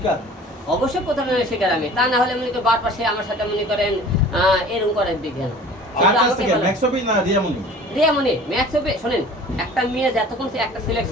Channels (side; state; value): both; normal; correlation 0.45